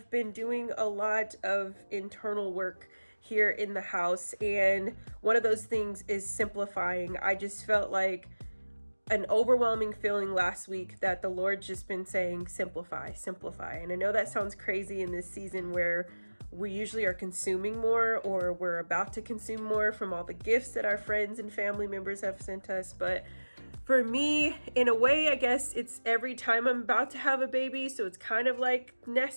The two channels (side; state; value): both; inverted; correlation -1.00